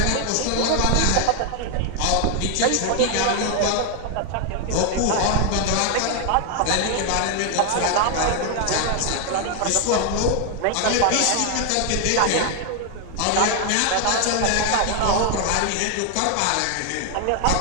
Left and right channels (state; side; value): different; both; correlation 0.00